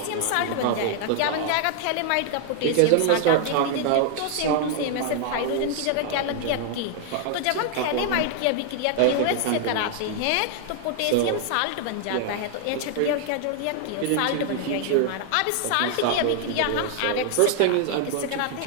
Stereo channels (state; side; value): different; both; correlation 0.00